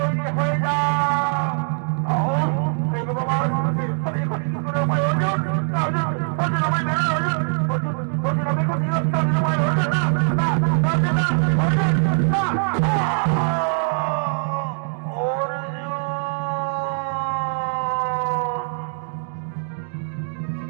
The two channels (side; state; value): left; silent; 56 dB below the other